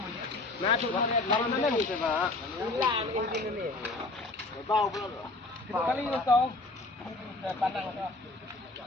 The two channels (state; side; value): quieter; right; 3.1 dB